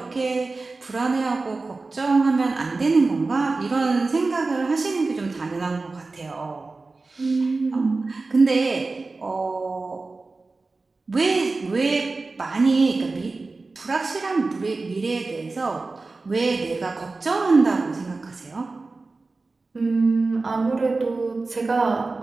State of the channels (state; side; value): quieter; left; 3.6 dB